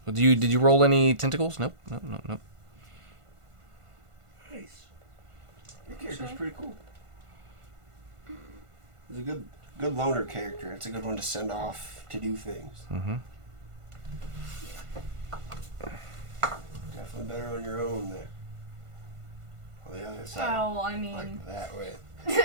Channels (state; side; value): late; left; 1.5 ms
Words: Did you roll any tentacles? Nope. Nope. Nice. Your character's pretty cool. He's a good loner character. It's a good one to send off to do things. Mm-hmm. Definitely better on your own there. On the other side. Oh, I mean, Like that way.